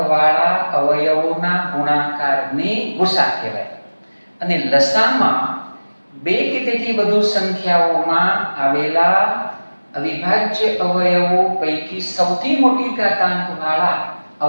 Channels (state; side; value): inverted; both; correlation -1.00